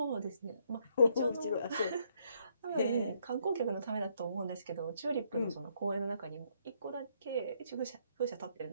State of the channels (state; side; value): inverted; both; correlation -0.72